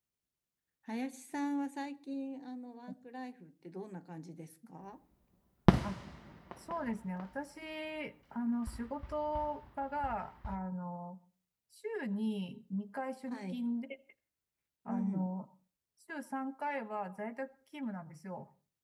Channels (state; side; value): identical; both; correlation 1.00